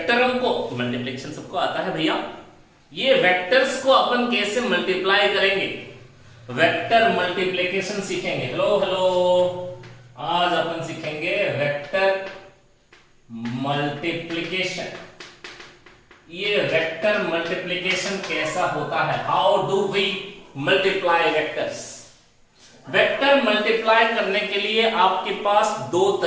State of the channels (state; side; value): identical; both; correlation 1.00